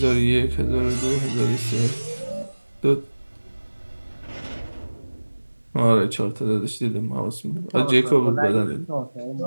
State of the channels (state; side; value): inverted; both; correlation -1.00